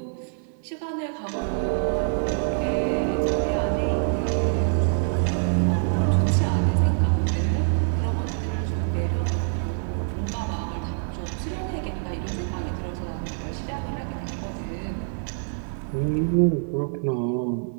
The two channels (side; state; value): left; silent; digital silence